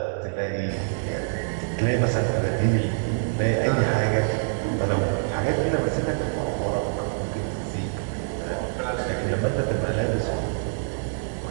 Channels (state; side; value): silent; left; digital silence